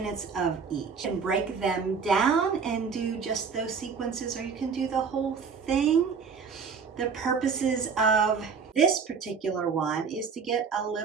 of each, and break them down and do just those sequences, or you can do the whole thing. The purposes of this particular one is to get a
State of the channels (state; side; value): quieter; left; 5.7 dB